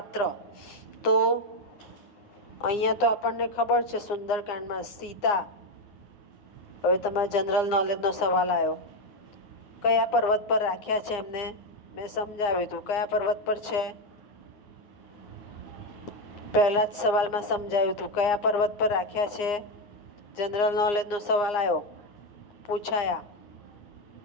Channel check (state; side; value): late; right; 9.7 ms